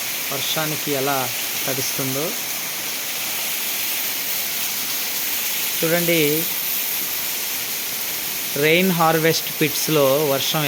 వర్షానికి ఎలా తడుస్తుందో చూడండి. రెయిన్ హార్వెస్ట్ పిట్స్లో వర్షం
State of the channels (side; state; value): both; identical; correlation 1.00